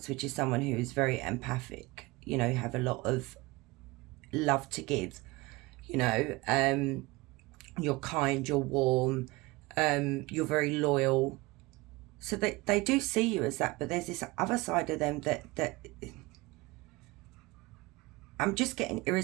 which is someone who is very empathic. You know, you have a lot of love to give. You know, you're kind, you're warm, you're very loyal. So they do see you as that, but there's this other side of them that I'm just getting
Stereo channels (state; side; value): quieter; left; 22.6 dB